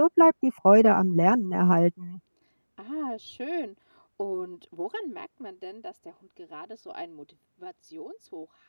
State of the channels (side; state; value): both; inverted; correlation -1.00